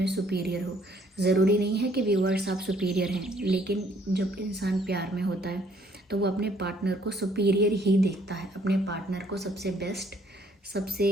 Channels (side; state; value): both; normal; correlation 0.63